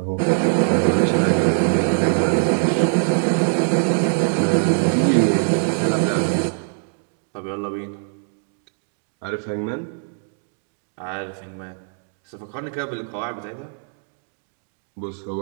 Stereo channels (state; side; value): silent; left; 64 dB below the other